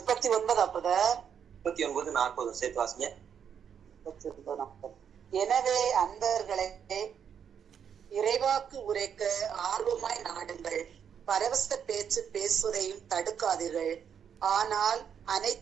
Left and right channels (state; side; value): quieter; left; 7.9 dB